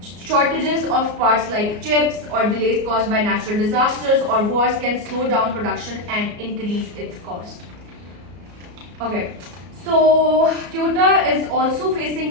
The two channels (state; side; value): late; left; 34 ms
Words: Shortages of parts like chips or delays caused by natural disasters or wars can slow down production and increase its cost. Okay, so Toyota is also